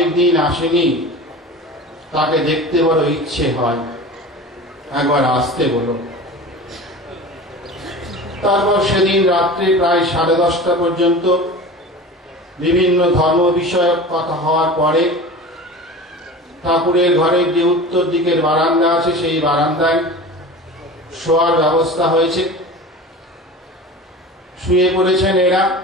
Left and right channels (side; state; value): both; normal; correlation 0.35